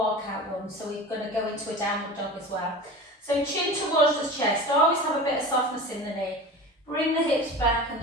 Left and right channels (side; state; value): both; normal; correlation 0.34